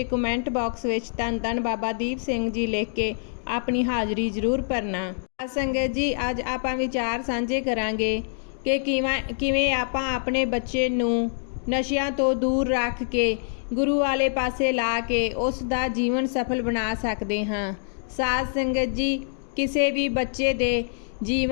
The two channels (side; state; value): right; silent; digital silence